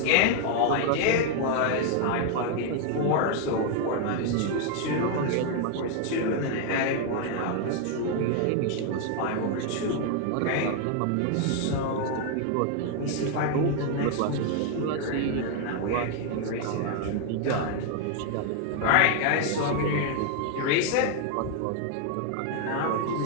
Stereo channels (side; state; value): both; different; correlation 0.00